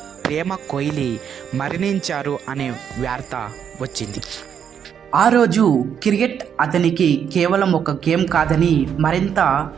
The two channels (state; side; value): quieter; left; 8.1 dB